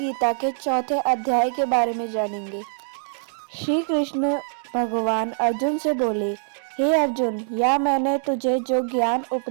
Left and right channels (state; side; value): silent; left; digital silence